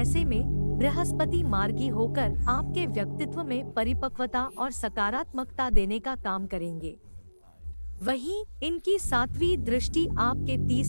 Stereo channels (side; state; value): both; inverted; correlation -1.00